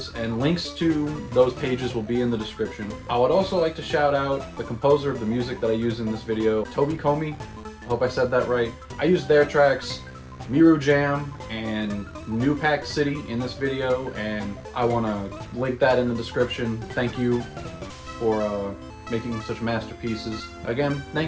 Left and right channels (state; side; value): identical; both; correlation 1.00